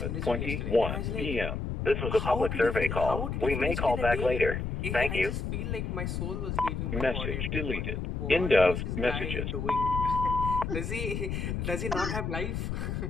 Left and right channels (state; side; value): noise; left; rumble, 3 dB below the sound